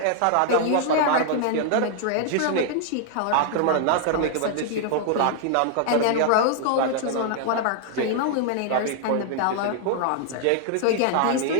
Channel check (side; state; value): both; different; correlation 0.00